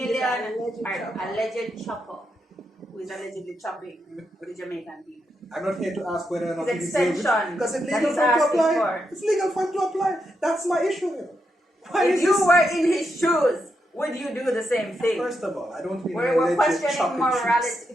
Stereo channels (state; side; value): normal; both; correlation 0.83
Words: with an alleged chopper. alleged chopper who is allegedly chopping the Jamaican people. I'm not here to ask whether or not His he deserves it. extension Because it's that legal he's for him to asking apply. for. It's legal for him to apply. That's my issue here. Why If is you this? were in his shoes, would you do the same thing? First of all, I don't mean We're alleged questioning chopping morality.